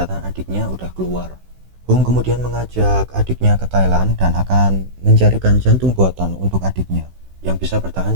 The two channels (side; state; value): left; late; 16 ms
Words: adiknya udah keluar. Hung kemudian mengajak adiknya ke Thailand dan akan mencarikan jantung buatan untuk adiknya yang bisa